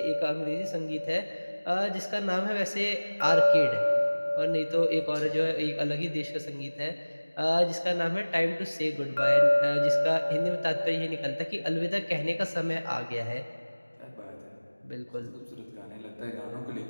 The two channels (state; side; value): inverted; both; correlation -1.00